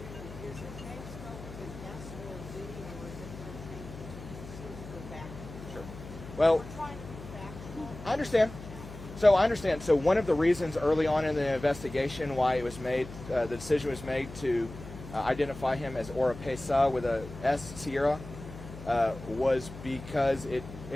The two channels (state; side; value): noise; left; hum, 13 dB below the sound